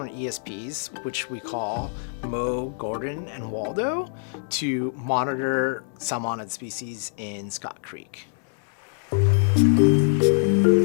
ESPs, which we call Mo, Gordon, and Waldo, to monitor salmonid species in Scott Creek.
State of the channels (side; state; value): right; silent; 60 dB below the other